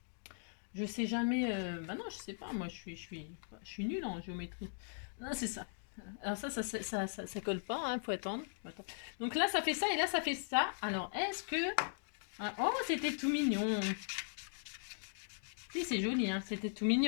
Bah non, je sais pas. Moi, je suis nulle en géométrie. Non, c'est ça. Alors ça colle pas. Hein, faut attendre. Donc là, ça fait ça et là, ça fait ça. Alors, est-ce que... Ah, oh, c'était tout mignon. Si, c'est joli. Hein, c'était tout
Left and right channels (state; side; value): silent; right; digital silence